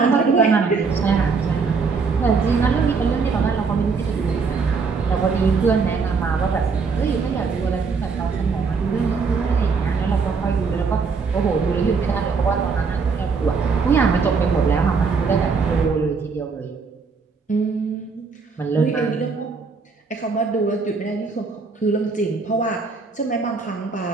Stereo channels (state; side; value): quieter; left; 4.9 dB